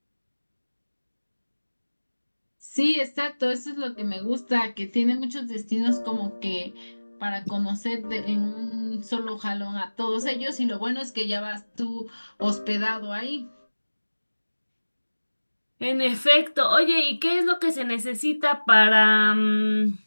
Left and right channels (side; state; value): both; inverted; correlation -1.00